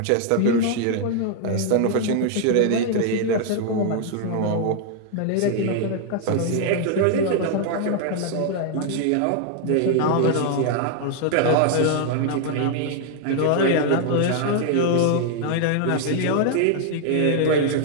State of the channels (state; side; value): different; both; correlation 0.00